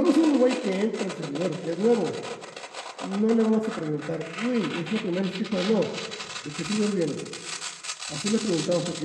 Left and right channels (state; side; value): identical; both; correlation 1.00